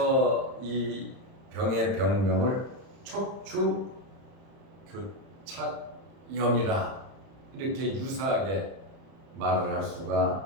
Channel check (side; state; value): left; late; 30 ms